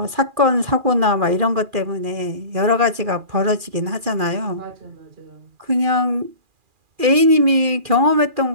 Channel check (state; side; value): late; left; 2.4 ms